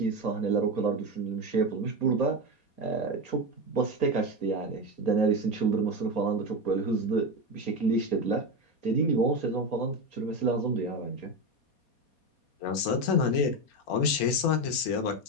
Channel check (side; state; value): right; late; 4.2 ms